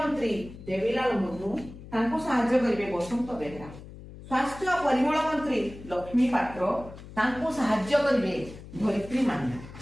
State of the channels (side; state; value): left; noise; hum, 15 dB below the sound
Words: देवीलाल मुर्मू ताकु सहाय्य करिवे बसंत बेहेरा। स्वास्थ्य और परिमल मंत्री लक्ष्मी पात्र ताकु सहाय्य करिवे धरित्री मान्ना।